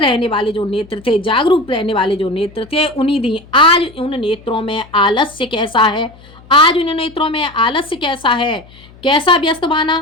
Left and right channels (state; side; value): noise; left; hum, 24 dB below the sound